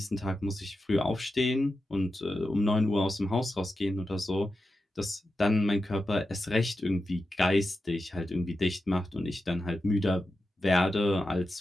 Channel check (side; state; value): both; normal; correlation 0.90